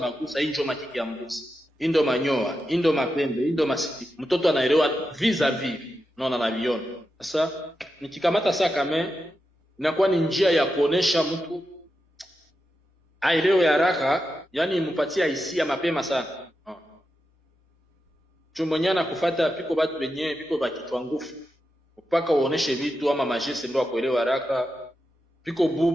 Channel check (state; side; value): normal; both; correlation 0.88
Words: hiyo makiki ya mbuzi. Indo manyoa, indo mapembe, indo masiti. Mtoto anaelewa vis-a-vis. Unaona na viona. Sasa nikikamata sasa kama inakuwa ni njia ya kuonesha mtu aelewe haraka, yani mpatia hisia mapema sana. Chumonyana kufuata piko watu wenyewe piko bakitwa nguvu. Mpaka uoneshe vitu ama majesi ndio akuelewa haraka. Piko